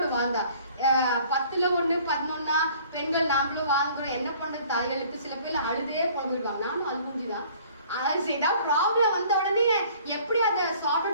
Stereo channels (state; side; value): inverted; both; correlation -0.54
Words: வாழ்ந்தா. 10ல் 1 11 பெண்கள் நாமளும் வாழ்ந்துடும், என்ன பண்றது தாய்களுக்கு. சில பேர் அழுதே போடுவாங்க, நானும் அழுகுஞ்சுதான். ஏதாவது ப்ராப்ளம் வந்த உடனே எப்படி அதை சார்ட்